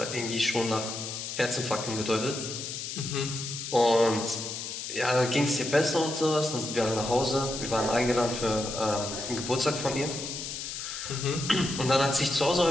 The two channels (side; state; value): left; noise; hiss, 6 dB below the sound